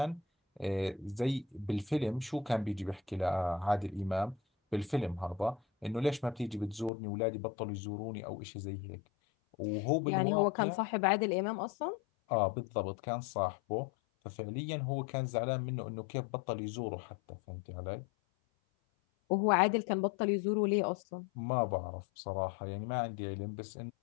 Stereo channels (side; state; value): right; drops out; at 6.9 s